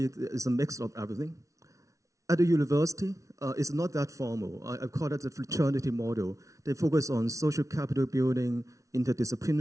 it's a mix of everything. At the university, it's not that formal. I call it the fraternity model. They focus on social capital building,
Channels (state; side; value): late; left; 0.15 ms